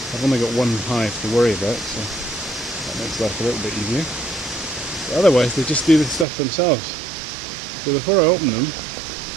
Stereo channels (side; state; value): left; drops out; at 6.2 s